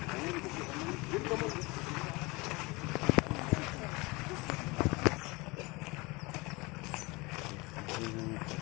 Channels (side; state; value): right; quieter; 24.8 dB